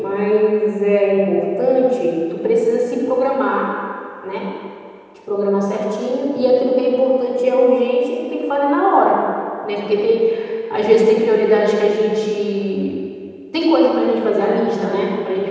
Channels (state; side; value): identical; both; correlation 1.00